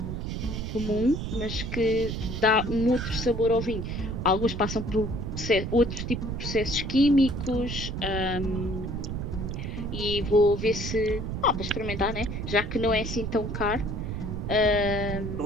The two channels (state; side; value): noise; right; rumble, 4 dB below the sound